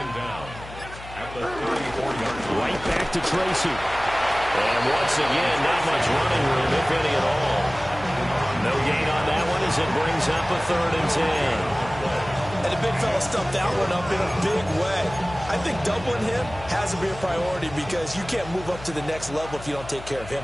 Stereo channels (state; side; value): noise; left; hum, 15 dB below the sound